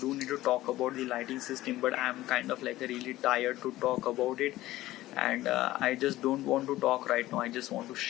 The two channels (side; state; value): right; quieter; 16.2 dB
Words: need to talk about the lighting system, but I'm kind of like really tired to talk about it, and I just don't want to talk right now. I just want to